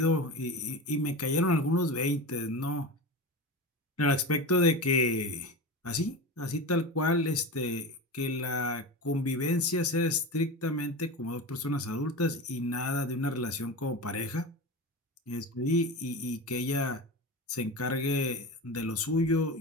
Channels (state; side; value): normal; both; correlation 0.26